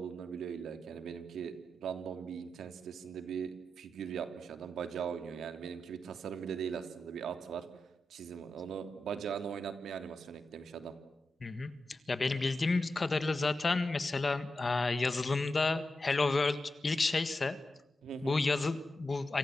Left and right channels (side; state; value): both; normal; correlation 0.89